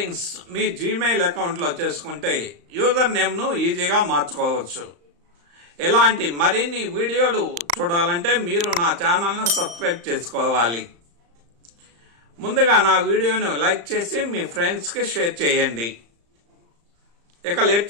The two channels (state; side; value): late; left; 35 ms